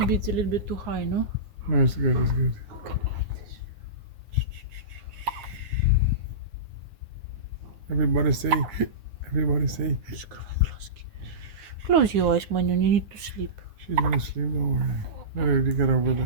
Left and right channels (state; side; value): late; left; 9.6 ms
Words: it's a little bit too high, no? No, it's good. It's good. Everybody say. Everybody say. Close your eyes, Manu. You need to sleep. She's gonna sleep. Don't worry. Let her get over the